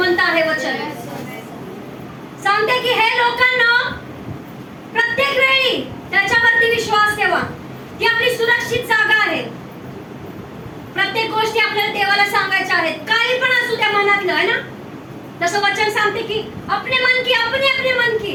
आहे वचन। सांगते की हे लोकांना प्रत्येक वेळी त्याच्यावरती विश्वास ठेवा, ती आपली सुरक्षित जागा आहे। प्रत्येक गोष्टी आपल्याला देवाला सांगायच्या आहेत, काही पण असू त्या मनातलं, है ना? तसं वचन सांगते कि अपने मन की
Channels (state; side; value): identical; both; correlation 1.00